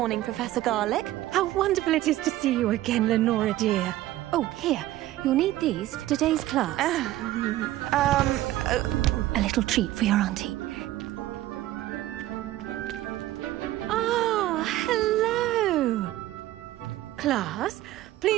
Professor Garlick. How wonderful it is to see you again, Lenora dear. Oh, here. You'll need these for today's class. A little treat for your auntie. Ah, hello. Class,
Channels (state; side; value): quieter; left; 15.1 dB